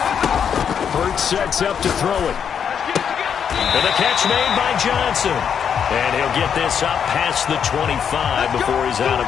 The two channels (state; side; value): quieter; right; 7.7 dB